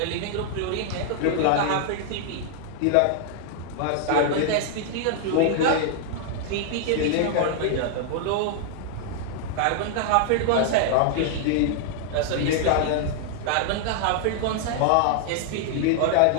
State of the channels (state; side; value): different; both; correlation -0.01